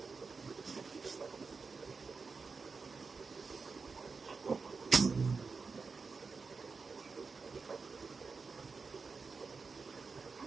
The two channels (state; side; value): quieter; left; 4.7 dB